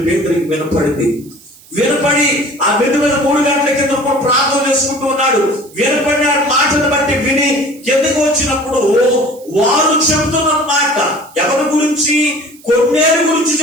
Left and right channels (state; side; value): noise; right; hiss, 25 dB below the sound